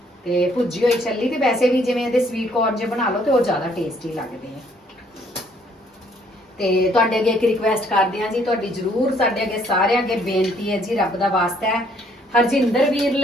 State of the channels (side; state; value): both; normal; correlation 0.65